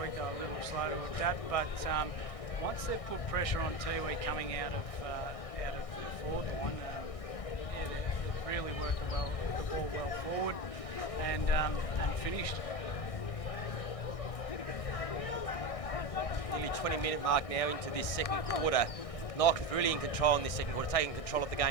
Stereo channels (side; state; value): right; late; 1.6 ms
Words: week, they were a little slow to adapt, but once they've put pressure on Tiwi coming out of the forward line, they've really worked the ball well forward and finished. Nearly 20-minute mark now into this second quarter. Nightcliff really in control in this second quarter, taking control of the